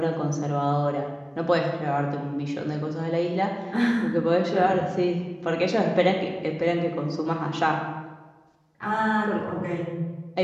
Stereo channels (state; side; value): identical; both; correlation 1.00